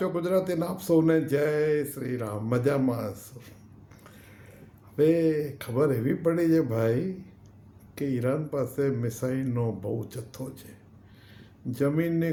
ગુજરાતીને આપ સૌને જય શ્રી રામ. મજામાં હશો? હવે ખબર એવી પડી છે ભાઈ કે ઈરાન પાસે મિસાઇલનો બહુ જથ્થો છે.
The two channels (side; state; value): both; identical; correlation 1.00